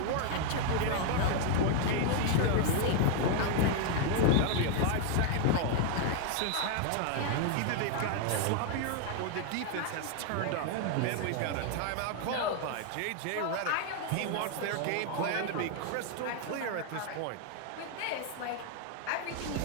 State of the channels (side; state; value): both; different; correlation 0.00